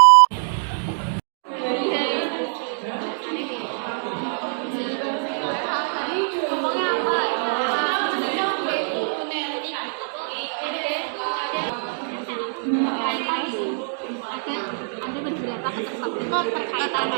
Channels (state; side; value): silent; left; digital silence